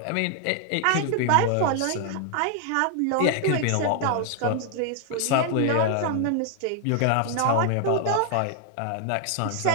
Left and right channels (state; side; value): different; both; correlation 0.00